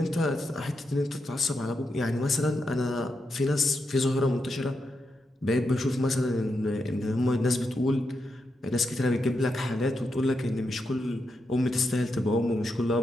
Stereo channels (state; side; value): normal; both; correlation 0.85